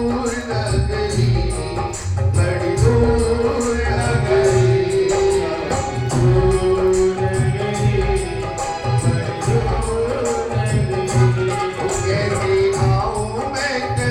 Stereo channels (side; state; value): both; identical; correlation 1.00